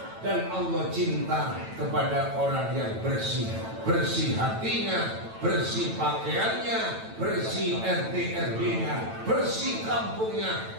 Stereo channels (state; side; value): late; left; 9.0 ms